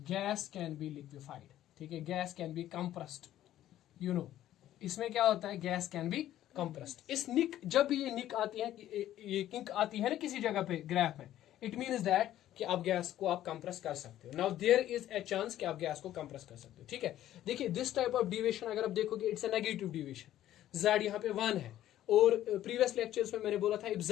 गैस कैन बी लिक्विफाइड, ठीक है, gas can be compressed, you know, इसमें क्या होता है, गैस कैन बी कंप्रेस्ड। इस निक, जब भी ये निक आती है, ये किंक आती है ना किसी जगह पे ग्राफ में, इट मीन्स दैट कि आप गैस को आप कंप्रेस कर सकते हो, now there is a chance कि आप गैस को कंप्रेस कर सकते हो, ठीक है। देखिए दिस टाइप ऑफ डिविएशन अगर आप देखोगे it's a negative deviation, Z यहाँ पे 1 है, और प्रीवियस लेक्चर्स में मैंने बोला था if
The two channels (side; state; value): right; quieter; 12.8 dB